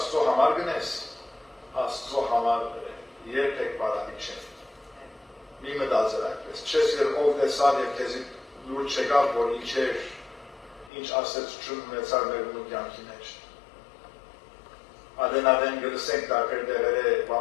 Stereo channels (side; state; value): right; drops out; at 10.9 s